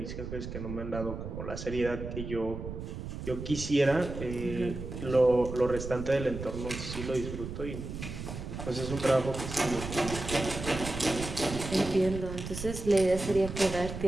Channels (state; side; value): noise; right; rumble, 7 dB below the sound